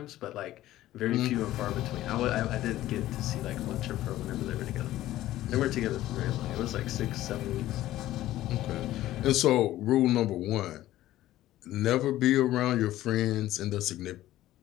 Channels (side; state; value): right; quieter; 14.7 dB